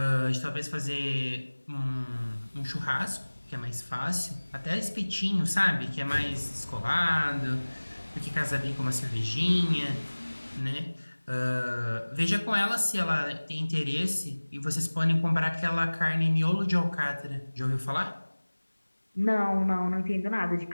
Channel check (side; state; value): both; inverted; correlation -1.00